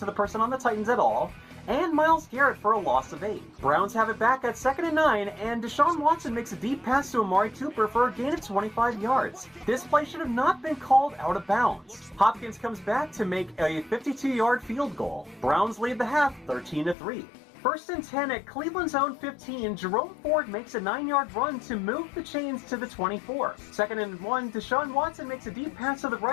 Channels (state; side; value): drops out; right; at 16.9 s